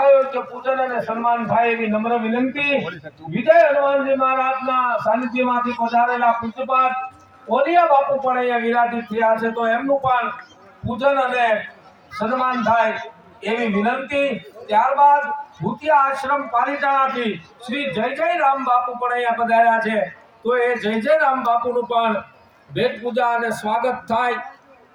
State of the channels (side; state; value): both; identical; correlation 1.00